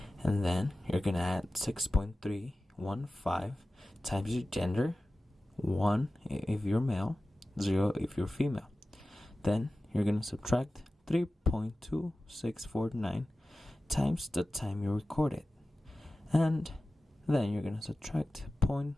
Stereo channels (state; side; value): normal; both; correlation 0.96